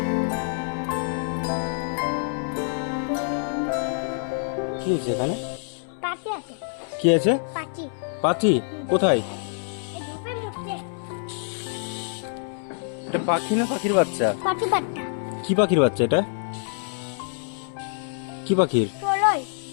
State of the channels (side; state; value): right; silent; 61 dB below the other